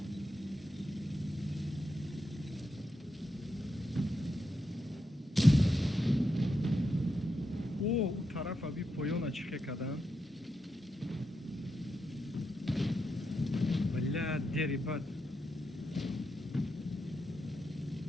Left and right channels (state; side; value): normal; both; correlation 0.85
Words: О, у тараф аби поёна чихе кадан. Бля, дери бад.